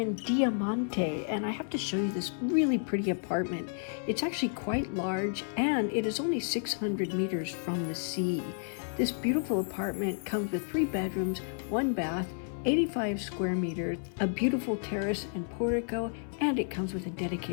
Diamante and I have to show you this really pretty apartment. It's actually quite large and it is only 600 meters from the sea. This beautiful apartment comes with 3 bedrooms, 1 bath, 85 square meters, a beautiful terrace and portico, and it comes with a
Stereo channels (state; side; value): silent; right; 57 dB below the other